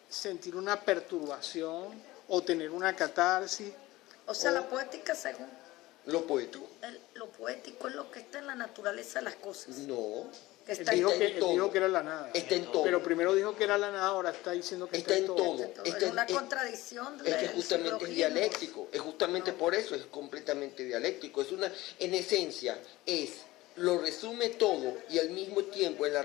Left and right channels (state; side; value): quieter; right; 18.5 dB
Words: sentir una perturbación o tener una catarsis. O sea, O- la poética, según Lo poético. lo poético, es lo que está en la naturaleza de las cosas. No. Que Él está dijo, en Está que, en él todo. dijo que era la nada. Está en todo. Pero primero dijo que era la nada, ahora está diciendo que Está en todo. todo. Está Es una en- contradicción Es que del justamente es silogismo. dialéctico, es justamente por eso es completamente dialéctico. Es una, en esencia, lo resume todo y al mismo tiempo es